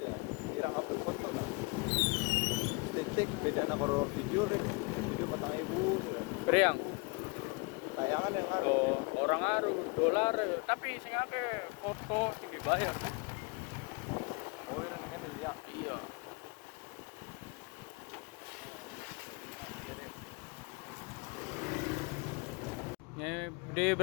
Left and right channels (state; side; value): quieter; right; 28.4 dB